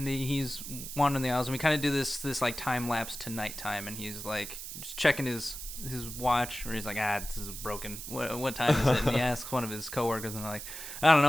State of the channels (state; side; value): noise; right; hiss, 9 dB below the sound